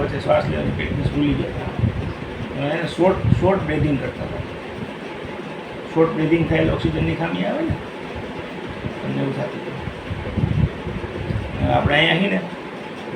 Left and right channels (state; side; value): identical; both; correlation 1.00